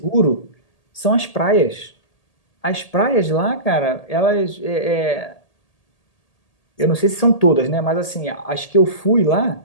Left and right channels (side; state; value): right; late; 1.8 ms